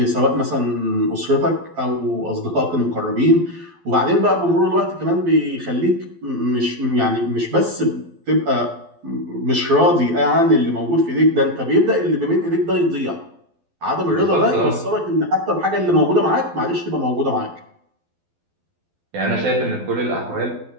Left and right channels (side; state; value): left; late; 12 ms